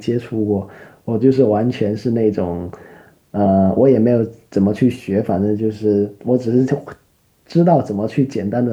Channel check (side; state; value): both; identical; correlation 1.00